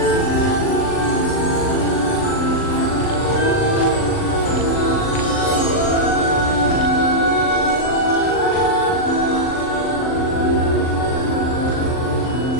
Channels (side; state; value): right; late; 39 ms